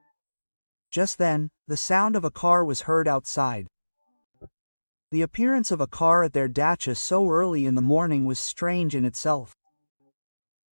Just then, the sound of a car was heard outside. The appearance of a car at their dacha so early in the morning was strange in itself.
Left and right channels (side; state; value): both; inverted; correlation -1.00